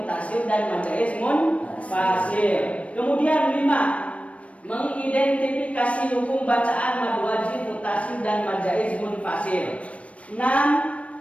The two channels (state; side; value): late; right; 0.064 ms